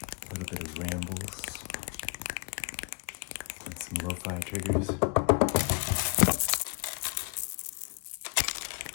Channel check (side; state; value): right; quieter; 29.3 dB